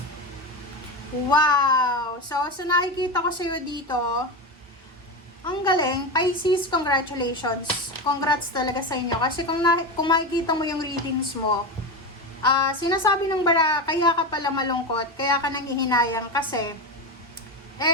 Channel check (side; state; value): both; normal; correlation 0.18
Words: Wow! So nakikita ko sa'yo dito, ang galing, Pisces, congratulations. Congrats talaga sa inyo. Kasi kung makikita mo yung readings mo, sinasabi ng bara, kaya ka pala malungkot, kaya ka nangihinayang kasi,